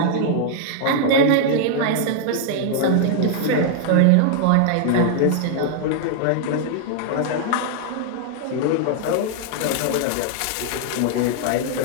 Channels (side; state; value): both; different; correlation -0.01